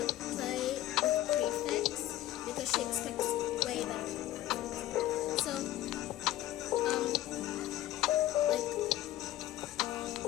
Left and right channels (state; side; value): quieter; right; 14.3 dB